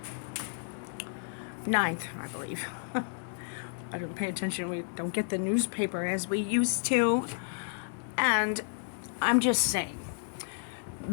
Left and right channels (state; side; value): silent; right; digital silence